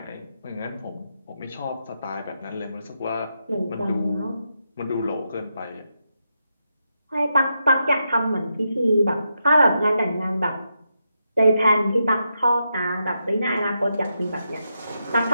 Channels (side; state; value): both; inverted; correlation -0.84